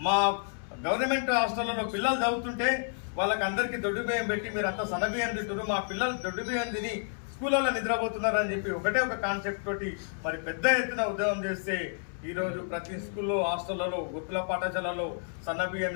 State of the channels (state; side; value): silent; right; 58 dB below the other